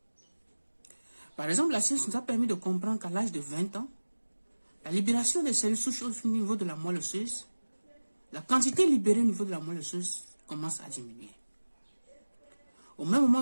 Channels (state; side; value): inverted; both; correlation -1.00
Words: Par exemple, la science nous a permis de comprendre qu'à l'âge de 20 ans, la libération des cellules souches au niveau de la moelle osseuse, la quantité libérée au niveau de la moelle osseuse commence à diminuer. Au même